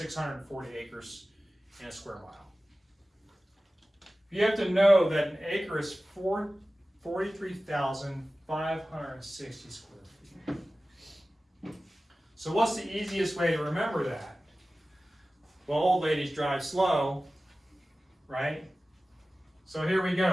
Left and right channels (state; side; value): normal; both; correlation 0.96